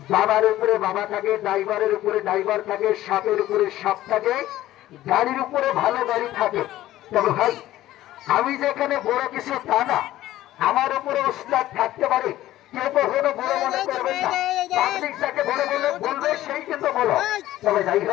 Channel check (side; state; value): right; quieter; 14.7 dB